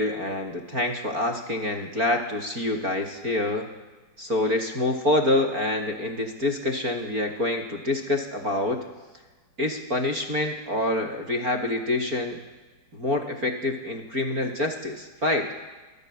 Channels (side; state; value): left; late; 4.4 ms